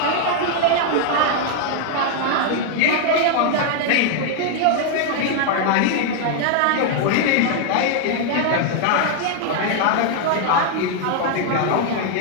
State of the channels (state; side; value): different; both; correlation 0.00